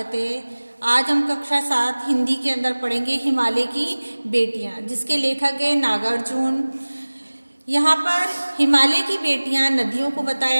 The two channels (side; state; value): both; inverted; correlation -1.00